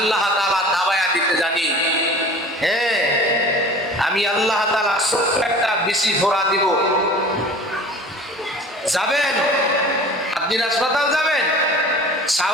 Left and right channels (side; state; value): both; normal; correlation 0.43